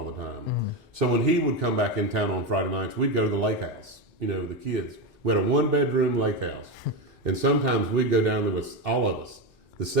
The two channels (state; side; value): normal; both; correlation 0.14